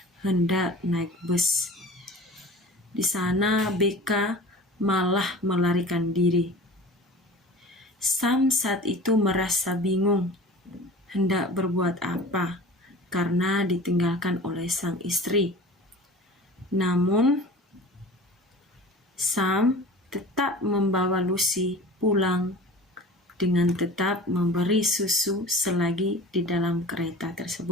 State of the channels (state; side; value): normal; both; correlation 0.38